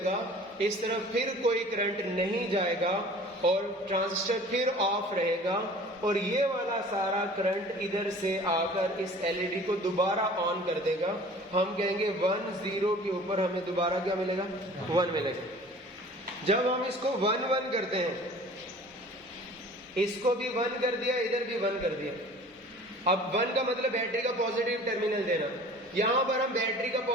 इस तरफ फिर कोई करंट नहीं जाएगा और ट्रांजिस्टर फिर ऑफ रहेगा और ये वाला सारा करंट इधर से आकर इस LED को दोबारा ऑन कर देगा। हम कहेंगे 1 0 के ऊपर हमें दोबारा क्या मिलेगा, 1 मिलेगा। जब हम इसको 1 1 करते हैं, इसको भी 1 कर दिया, इधर भी 1 कर दिया। अब 1 का मतलब बैटरी का पॉजिटिव टर्मिनल देना। यहां पर हम बैटरी का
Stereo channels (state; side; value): normal; both; correlation 0.46